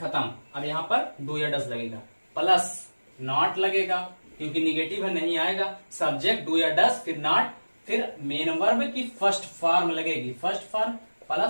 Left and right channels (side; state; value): both; inverted; correlation -1.00